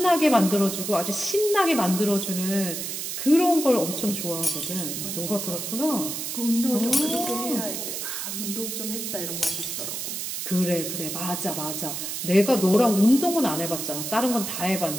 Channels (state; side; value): noise; right; hiss, 5 dB below the sound